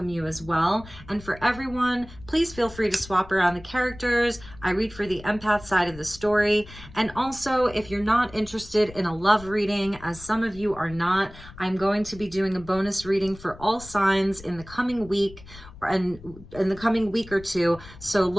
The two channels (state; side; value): noise; left; rumble, 18 dB below the sound